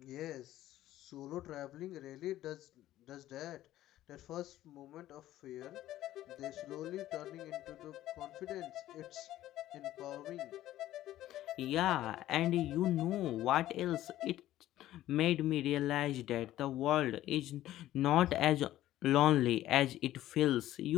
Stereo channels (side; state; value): right; quieter; 14.0 dB